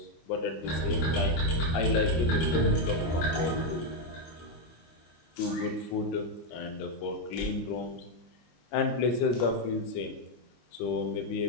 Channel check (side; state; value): right; late; 25 ms